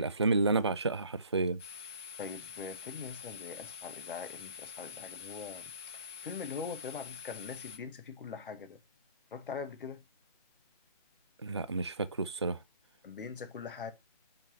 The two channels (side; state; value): both; inverted; correlation -0.51